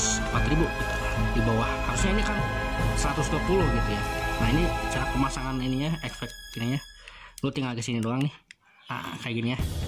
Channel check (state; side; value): identical; both; correlation 1.00